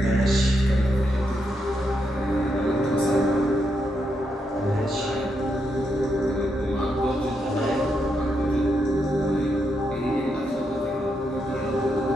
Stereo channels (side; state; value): both; normal; correlation 0.81